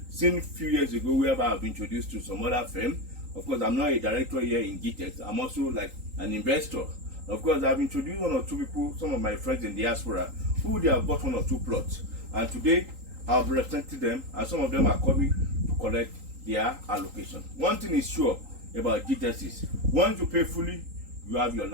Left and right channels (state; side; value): late; left; 3.8 ms